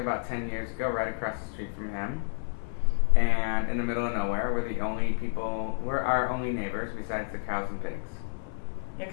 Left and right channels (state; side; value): silent; right; 58 dB below the other